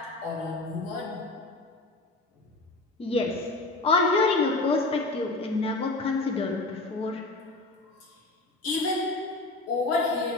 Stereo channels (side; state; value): right; quieter; 3.1 dB